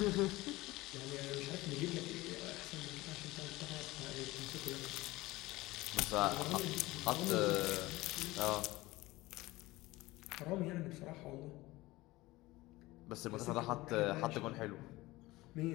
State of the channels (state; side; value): quieter; right; 19.5 dB